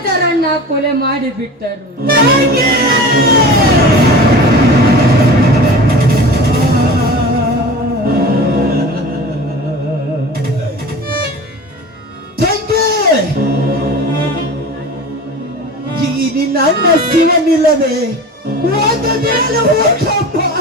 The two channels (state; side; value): normal; both; correlation 0.36